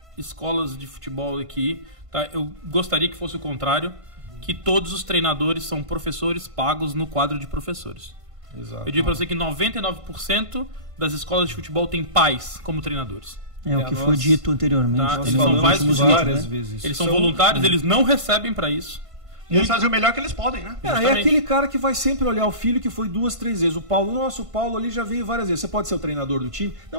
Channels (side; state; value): left; late; 1.5 ms